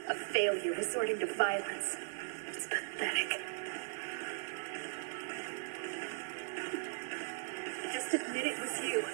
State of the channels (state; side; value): silent; left; digital silence